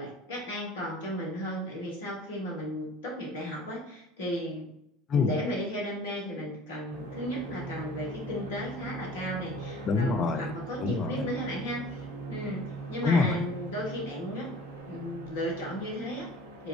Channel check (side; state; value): both; normal; correlation 0.45